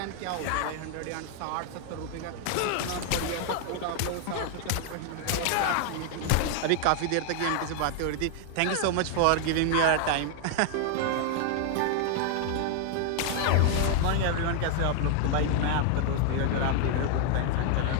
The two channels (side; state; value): both; different; correlation 0.00